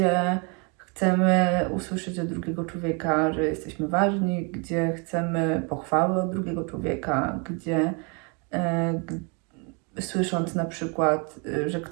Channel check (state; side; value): quieter; left; 33.6 dB